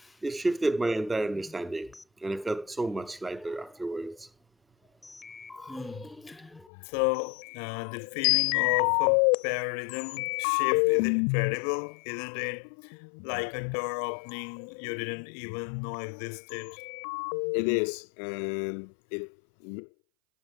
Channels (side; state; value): right; drops out; at 6.7 s